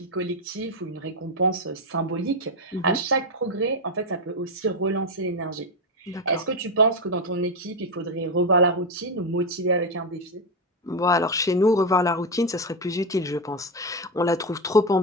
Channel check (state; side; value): normal; both; correlation 0.09